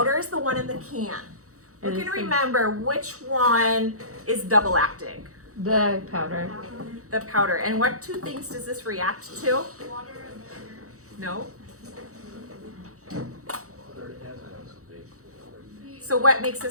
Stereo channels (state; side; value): late; left; 0.65 ms